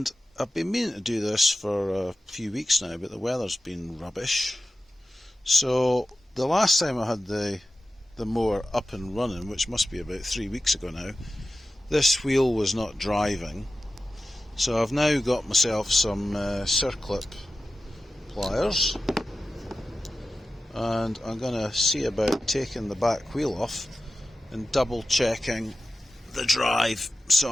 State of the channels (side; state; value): both; normal; correlation 0.93